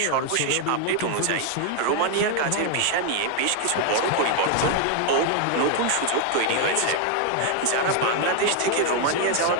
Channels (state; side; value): different; both; correlation 0.00